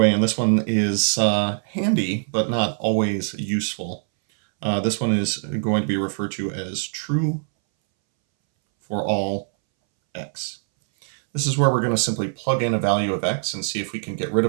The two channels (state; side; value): silent; left; 63 dB below the other